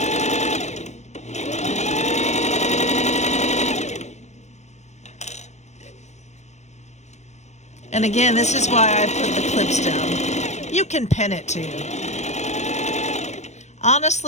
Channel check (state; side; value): late; right; 0.33 ms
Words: And again, this is why I put the clips down. You can pin it too.